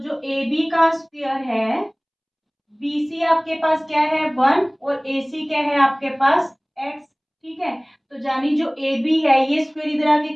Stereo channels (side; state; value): both; identical; correlation 1.00